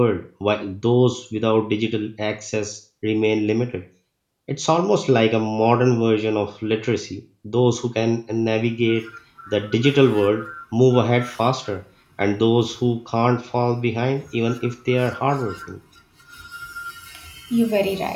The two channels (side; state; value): both; identical; correlation 1.00